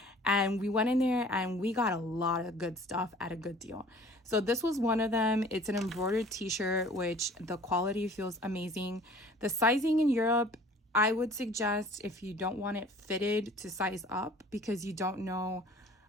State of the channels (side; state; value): both; normal; correlation 0.49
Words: and we went in there and we got a lot of good stuff at a good deal. So this was one of them. It's an embroidered t-shirt, which the quality feels amazing. The sizing in Europe, I would suggest, if you don't want it fitted, to size up, because you don't know